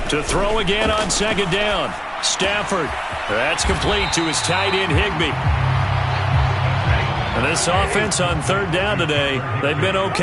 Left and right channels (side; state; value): both; identical; correlation 1.00